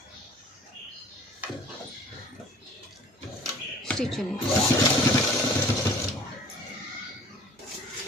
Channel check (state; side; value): normal; both; correlation 0.49